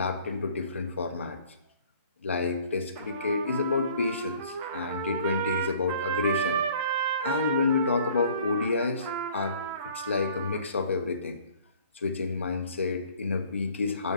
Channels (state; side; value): inverted; both; correlation -0.54